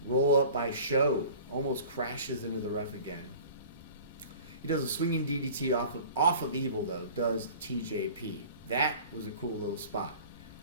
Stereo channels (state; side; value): inverted; both; correlation -0.43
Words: Roll up by Sho. Almost crashes into the ref again. He does a swinging DDT off of Evil, though, does TJP. That was a cool little spot.